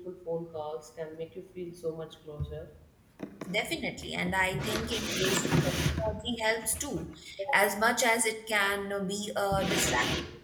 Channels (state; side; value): identical; both; correlation 1.00